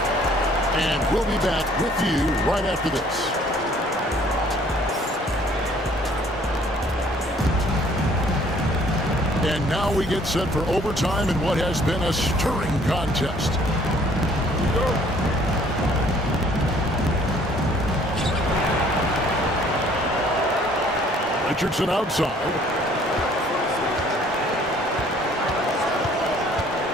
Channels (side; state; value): both; normal; correlation 0.58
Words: And we'll be back with you right after this. And now we get set for overtime in what has been a stirring contest. Richardson outside.